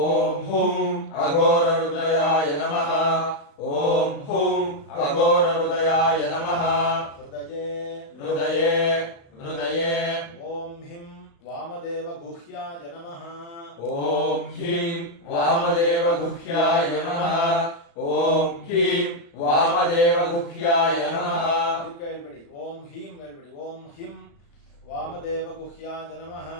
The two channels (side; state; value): right; late; 35 ms